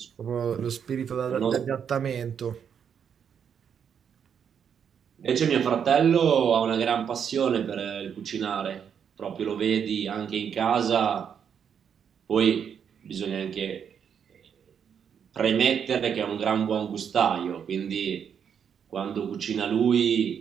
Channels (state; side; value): quieter; left; 7.7 dB